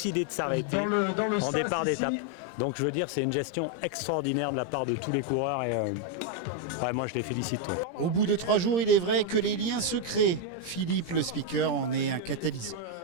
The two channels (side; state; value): right; late; 17 ms